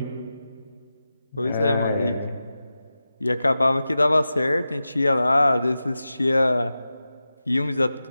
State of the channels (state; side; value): inverted; both; correlation -0.93